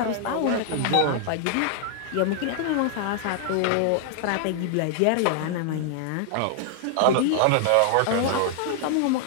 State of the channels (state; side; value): different; both; correlation -0.01